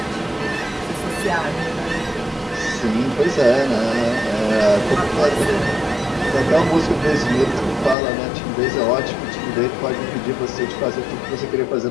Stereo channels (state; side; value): drops out; right; at 8.0 s